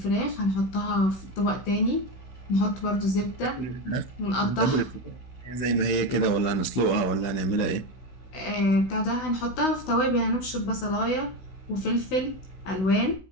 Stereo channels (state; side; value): late; right; 16 ms